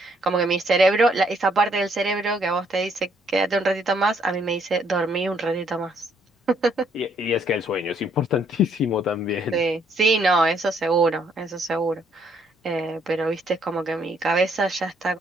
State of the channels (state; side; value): normal; both; correlation 0.68